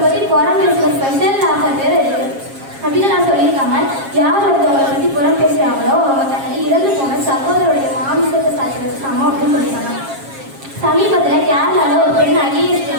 பற்றி புறம் பேசுகிற ஸ்பெஷல் ஆஃபர் வேறு இருக்குது அப்படின்னு நான் சொல்லியிருக்காங்க. யார் ஒருத்தவங்களை பற்றி புறம் பேசுகிறாங்களோ அவங்க தன்னை இறந்து போன சகோதரோடைய மாமிசத்தை சாப்பிட்டு சமம் அப்படின்னு சொல்லியிருக்காங்க. சமீபத்தில் கேரளாவில் ஒரு பெண் IAS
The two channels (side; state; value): left; late; 7.4 ms